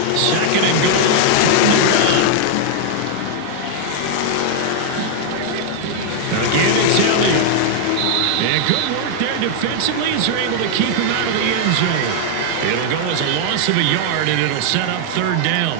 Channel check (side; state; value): both; different; correlation 0.00